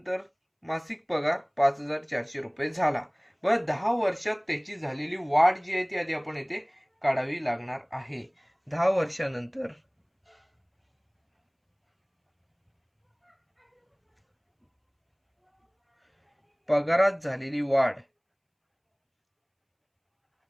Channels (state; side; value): identical; both; correlation 1.00